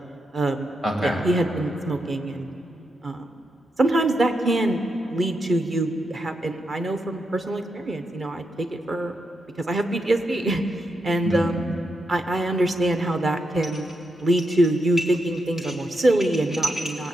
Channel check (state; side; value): normal; both; correlation 0.84